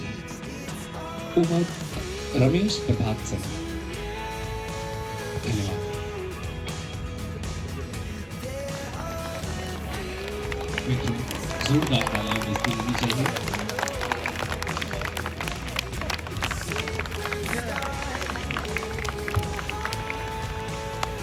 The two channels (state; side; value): identical; both; correlation 1.00